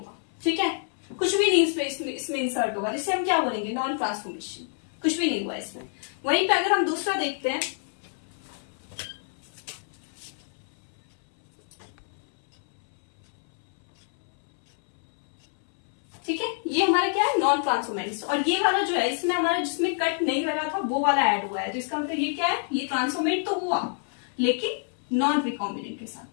ठीक है, कुछ भी नहीं इसमें इंसर्ट होगा, जिसे हम क्या बोलेंगे, नॉन ट्रांसफॉर्मेशन, कुछ भी नहीं हुआ इसमें। वहीं पे अगर हम दूसरा देखते हैं, ठीक है, ये हमारा क्या है, नॉन ट्रांसफॉर्मेंट्स। और ये वाला जो है इसमें हमारा जिसमें कट नहीं लगा था वो वाला ऐड हुआ है, तो इसका मतलब ये क्या है, ये ट्रांसफॉर्मेंट तो हुआ लेकिन नॉन रिकॉम्बिनेंट के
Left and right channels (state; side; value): silent; right; 60 dB below the other